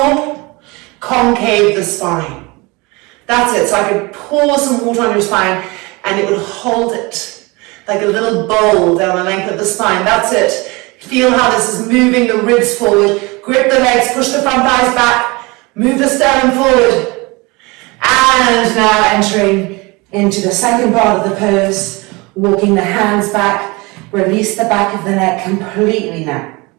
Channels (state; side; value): quieter; left; 25.3 dB